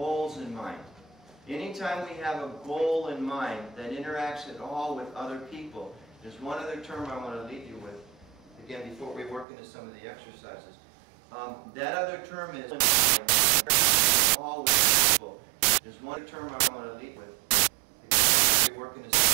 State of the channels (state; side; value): drops out; left; at 9.5 s